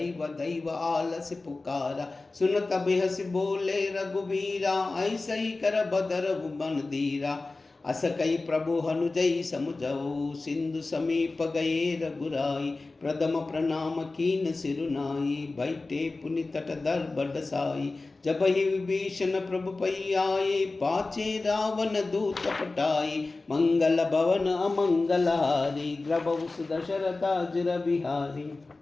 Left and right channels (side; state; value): right; quieter; 3.4 dB